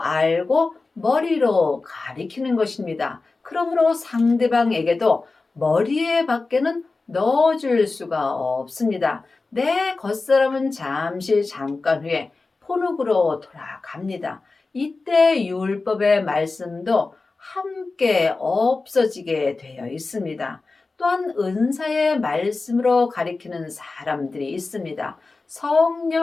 알고 머리로 가리키는 것입니다. 그러므로 상대방에게도 머리에 밖에는 넣어줄 수가 없습니다. 내 겉사람은 잠깐 후에 포룩으로 돌아갑니다. 이때 율법의 말씀도 함께 없어지게 되어 있습니다. 또한 은사의 말씀으로 가리키는 사람들이 있습니다.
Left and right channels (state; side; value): quieter; right; 3.7 dB